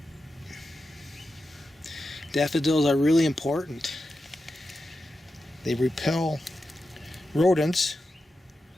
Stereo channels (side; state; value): both; normal; correlation 0.90